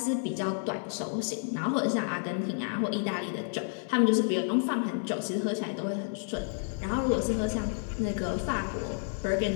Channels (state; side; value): silent; right; 58 dB below the other